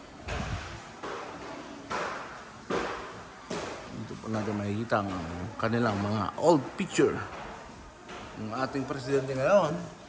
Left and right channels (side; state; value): both; identical; correlation 1.00